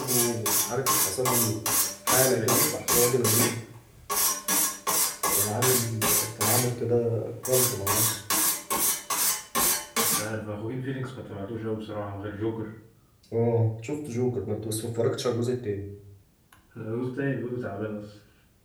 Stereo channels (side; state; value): both; identical; correlation 1.00